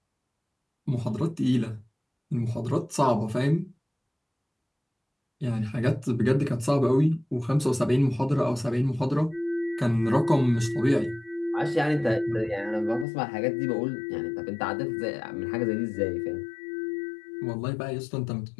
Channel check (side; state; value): right; drops out; at 13.1 s